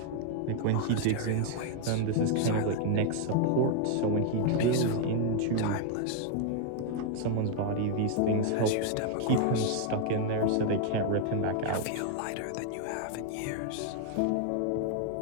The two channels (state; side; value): different; both; correlation 0.00